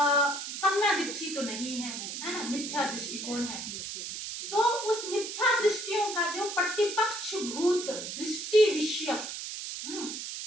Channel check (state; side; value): noise; right; hiss, 6 dB below the sound